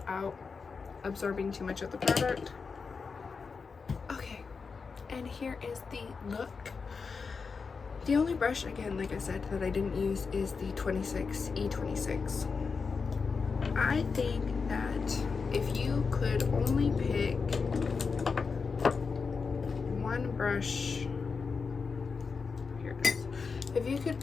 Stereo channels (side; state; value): right; quieter; 5.1 dB